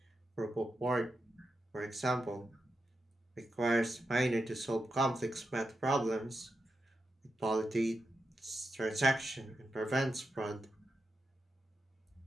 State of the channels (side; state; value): both; normal; correlation 0.87